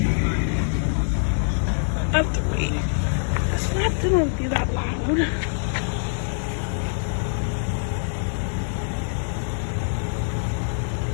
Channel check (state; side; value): silent; right; digital silence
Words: I have to wait. It's not gonna be that loud.